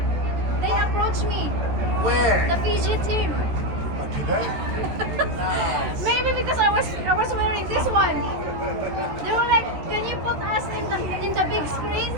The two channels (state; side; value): late; left; 13 ms